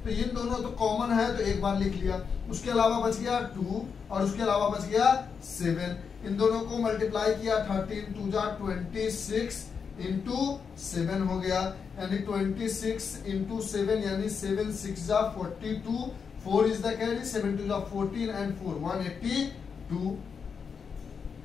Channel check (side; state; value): right; quieter; 6.1 dB